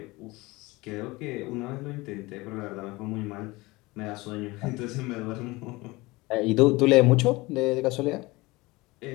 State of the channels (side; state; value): right; quieter; 22.1 dB